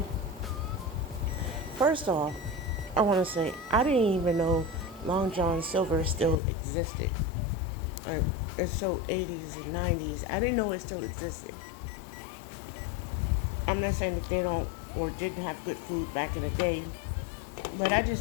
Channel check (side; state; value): right; drops out; at 6.4 s